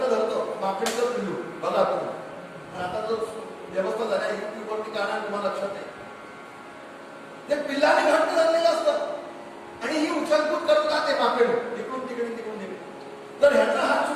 माकडीचं पिल्लू बघा तुम्ही. आता जो व्यवस्था झाली आहे युट्यूबवरती काना तुम्हाला लक्षात आहे. ते पिल्लाने घट्ट धरलेलं असतं आणि ही उचलकूद करत राहते माकडे, इकडून तिकडे तिकडून तिकडे. तर ह्याचा हात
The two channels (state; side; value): identical; both; correlation 1.00